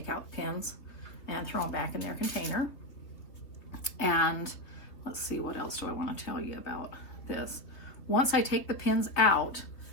out the pins and throw them back in their container. And let's see, what else do I want to tell you about this? Once I take the pins out,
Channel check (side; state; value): right; late; 3.1 ms